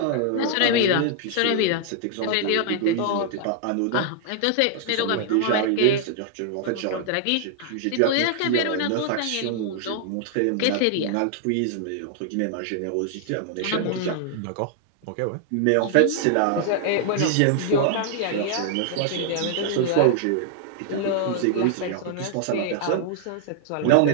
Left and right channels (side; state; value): both; different; correlation -0.01